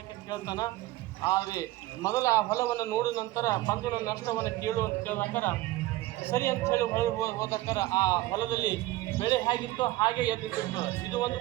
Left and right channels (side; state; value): left; quieter; 17.4 dB